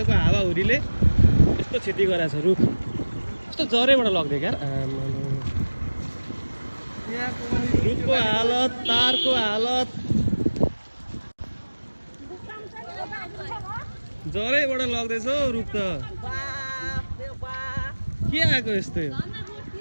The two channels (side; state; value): both; inverted; correlation -1.00